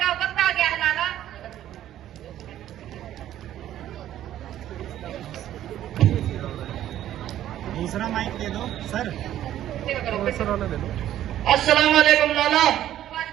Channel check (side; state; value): left; quieter; 12.2 dB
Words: वक्त आ गया है लाला। दूसरा माइक दे दो सर, दूसरा वाला दे दो। अस्सलाम वालेकुम लाला।